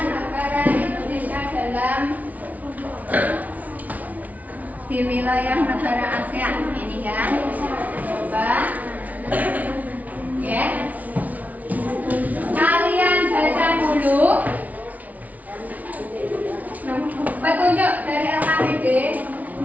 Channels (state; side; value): late; left; 0.073 ms